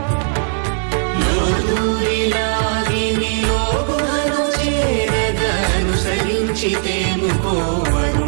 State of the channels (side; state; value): left; silent; 57 dB below the other